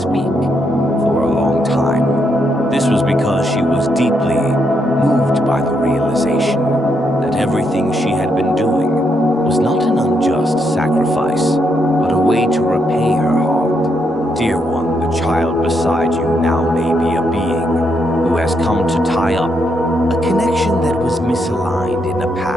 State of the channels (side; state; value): both; normal; correlation 0.78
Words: for a long time. This was because she was deeply moved by the realization that everything she had been doing was not an unjust sacrifice, but a way to repay her heart. Dear one, the child beside you now may be a being who has come to tie up a connection that was misaligned in a